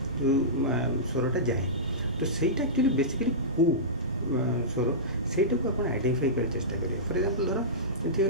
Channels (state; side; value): normal; both; correlation -0.18